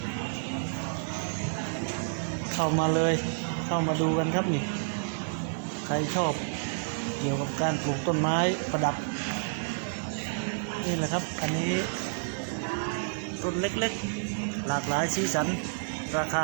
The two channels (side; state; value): left; silent; digital silence